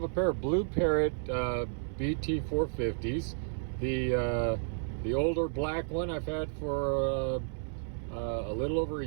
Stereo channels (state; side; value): silent; left; 56 dB below the other